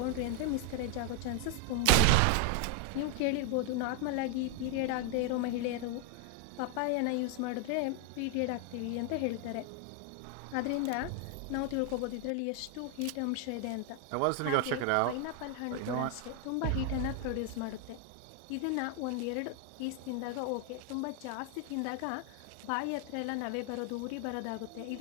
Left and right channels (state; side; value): different; both; correlation 0.00